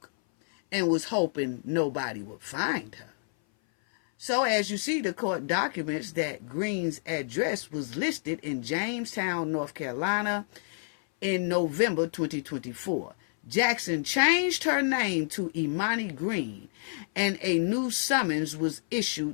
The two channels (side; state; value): right; silent; 57 dB below the other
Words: and was hoping nobody would find her. So as you see, the court documents that Green's address was listed in Jamestown, North Carolina in November 2024. Jackson changed her name to Imani Green and a new summons was